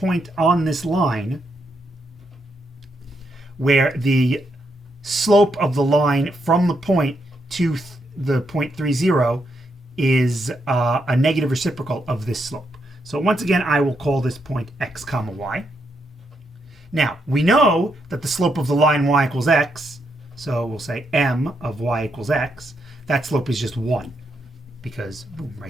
on this line where the slope of the line from the point to the point 30 is a negative reciprocal of this slope. So once again, I will call this point x comma y. Now, we know that the slope of the line y equals x, so we'll say m of y equals x. That slope is just 1, because boom,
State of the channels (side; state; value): both; normal; correlation 0.80